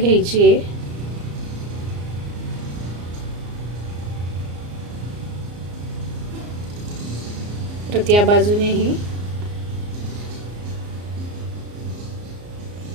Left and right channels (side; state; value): left; late; 34 ms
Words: आहे। परत या बाजूनेही